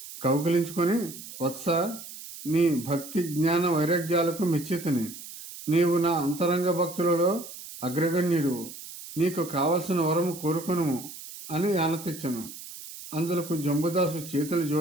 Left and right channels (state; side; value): noise; right; hiss, 13 dB below the sound